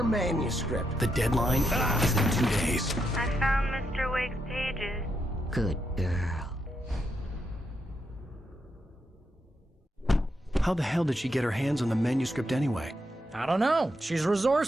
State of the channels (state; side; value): normal; both; correlation 0.82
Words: manuscript. The deadline is in 2 days. I found Mr. Wake's pages. Good girl. How the hell did she get her hands on the manuscript anyway? I don't know. She's